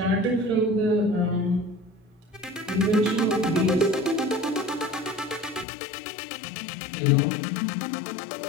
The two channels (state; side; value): drops out; right; at 5.7 s